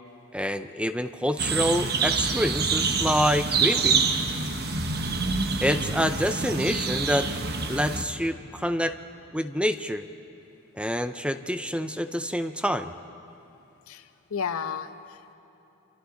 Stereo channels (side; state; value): both; normal; correlation 0.55